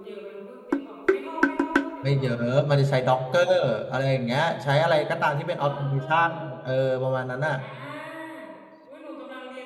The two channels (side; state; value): both; identical; correlation 1.00